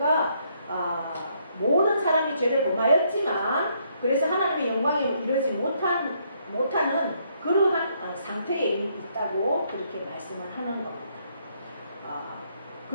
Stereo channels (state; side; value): inverted; both; correlation -0.71